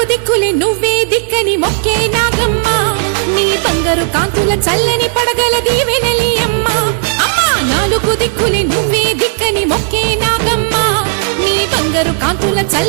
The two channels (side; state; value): left; silent; digital silence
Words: దిక్కులే నువ్వే దిక్కని మొక్కే నాగమ్మ నీ బంగారు కాంతుల చల్లని పడగల దీవెనలి అమ్మ అమ్మా నాలుగు దిక్కులే నువ్వే దిక్కని మొక్కే నాగమ్మ నీ బంగారు కాంతుల